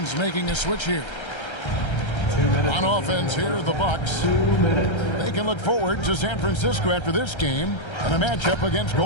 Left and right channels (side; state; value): right; late; 1.3 ms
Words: making a switch here. 2 minutes. On offense here, the Bucks. 2 minutes. They can look forward to San Francisco after this game and a matchup against